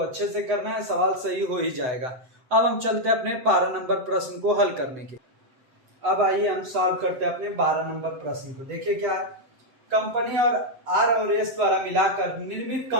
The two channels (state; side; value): late; left; 7.9 ms